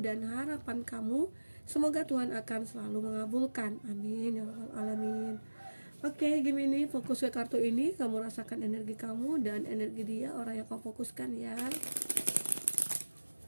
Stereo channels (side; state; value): both; inverted; correlation -1.00